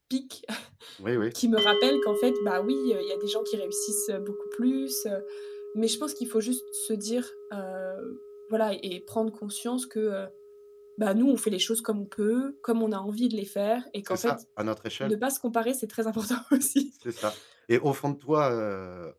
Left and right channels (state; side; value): identical; both; correlation 1.00